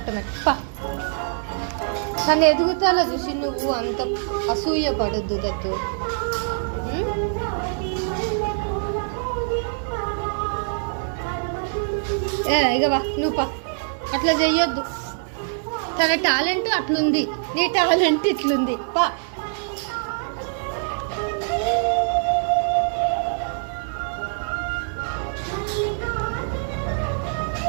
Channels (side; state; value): left; silent; 63 dB below the other